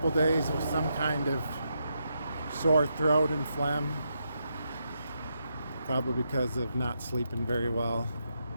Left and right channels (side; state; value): both; inverted; correlation -0.82